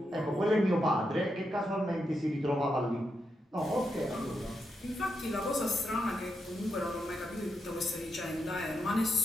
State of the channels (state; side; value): normal; both; correlation 0.84